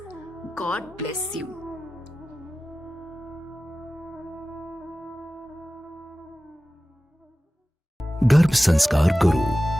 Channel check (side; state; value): both; normal; correlation 0.96